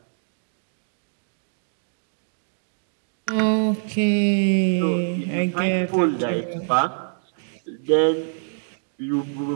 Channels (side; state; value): left; silent; digital silence